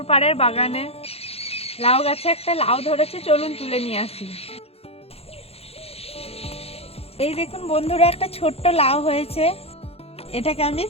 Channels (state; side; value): late; right; 0.29 ms